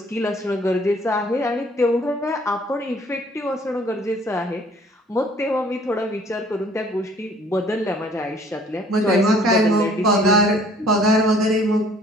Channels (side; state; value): both; normal; correlation 0.56